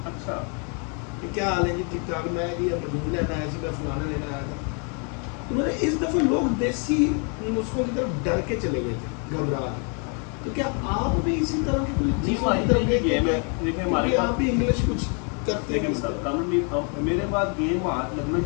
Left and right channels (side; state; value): right; quieter; 37.9 dB